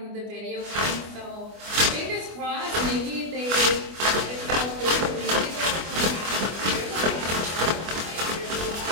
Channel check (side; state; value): left; late; 24 ms